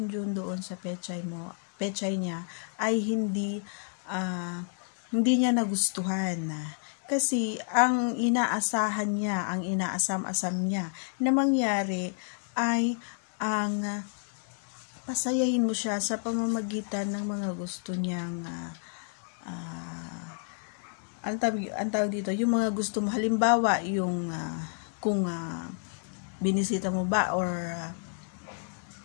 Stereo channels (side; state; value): right; silent; 56 dB below the other